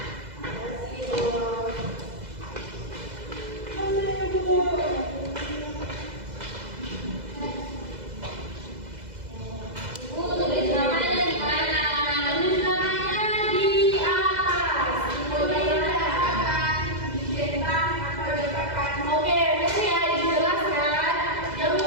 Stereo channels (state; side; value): late; left; 2.0 ms